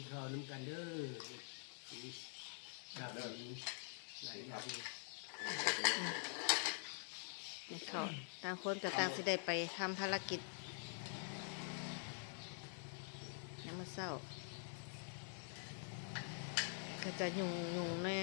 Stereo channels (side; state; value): right; silent; digital silence